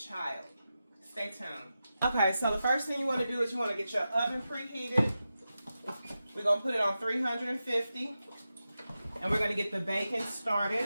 Stay tuned. Okay, so the first thing you want to do is you want to get your oven preheated. We're going to put it on 350, and we're going to get the bacon started.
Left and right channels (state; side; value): inverted; both; correlation -0.91